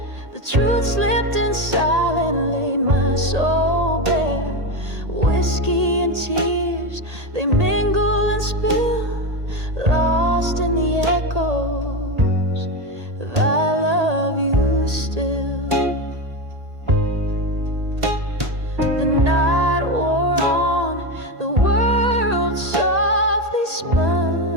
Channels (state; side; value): late; left; 1.8 ms